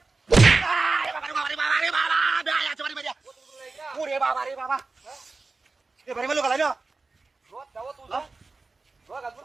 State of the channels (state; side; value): quieter; left; 3.8 dB